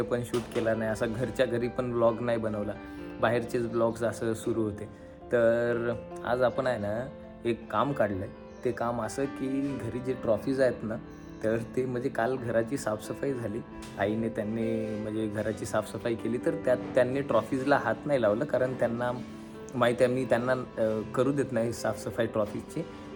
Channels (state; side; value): identical; both; correlation 1.00